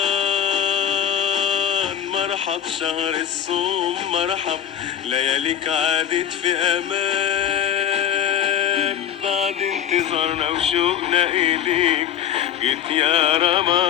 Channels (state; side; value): quieter; right; 9.5 dB